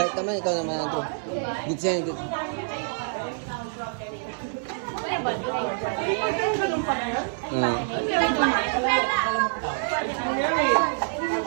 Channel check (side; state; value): left; silent; 61 dB below the other